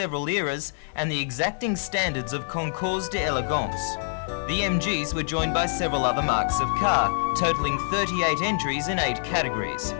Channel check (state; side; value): silent; right; digital silence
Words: eras and the exacting standards of concours d'elegance. The MGs were joined by several other marques of car, totalling 38 entries in 8 categories.